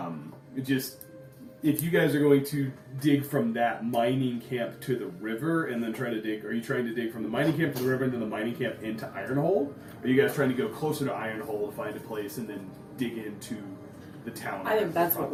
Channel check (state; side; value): identical; both; correlation 1.00